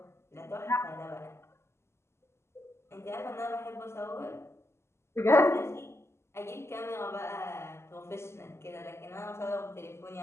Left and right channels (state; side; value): late; right; 0.13 ms